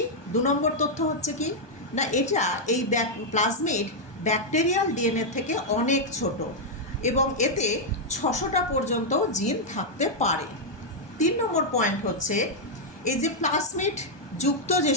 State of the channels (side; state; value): right; late; 1.2 ms